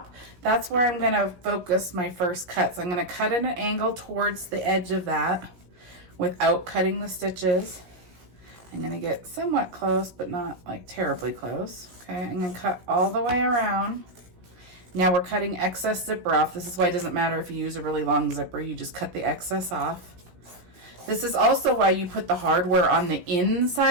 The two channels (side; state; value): left; late; 16 ms